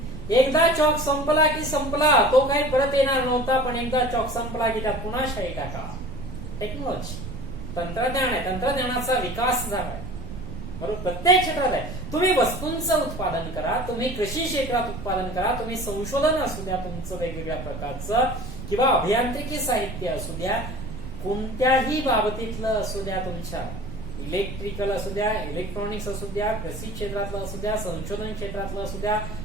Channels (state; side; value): noise; right; rumble, 10 dB below the sound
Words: एकदा चॉक संपला की संपला, तो काही परत येणार नव्हता. पण एकदा चॉक संपला की त्यात पुन्हा शाई टाका. टेक्नॉलॉजी, तंत्रज्ञान आहे. तंत्रज्ञानाचा विकास झाला आहे. बरोबर. प्रत्येक क्षेत्रात आहे. तुम्ही वस्तूंचं उत्पादन करा, तुम्ही कृषी क्षेत्रात उत्पादन करा, तुम्ही संशोधन असू द्या तुमचं वेगवेगळ्या प्रकारचं, किंवा अभियांत्रिकी साहित्य असू द्या, कोणत्याही बाबतीतलं असू द्या, तुमच्या इलेक्ट्रिकल असू द्या, इलेक्ट्रॉनिक्स असू द्या, कृषी क्षेत्रातलं असू द्या, संशोधन क्षेत्रातलं असू द्या,